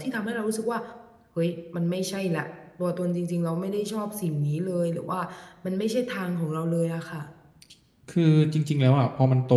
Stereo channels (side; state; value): both; identical; correlation 1.00